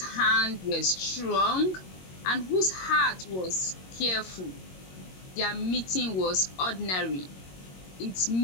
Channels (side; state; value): right; late; 22 ms